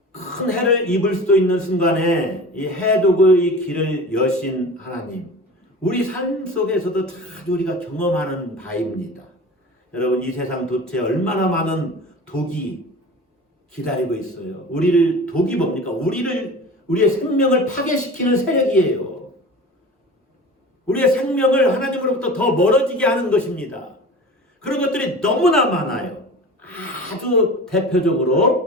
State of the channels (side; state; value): both; normal; correlation 0.36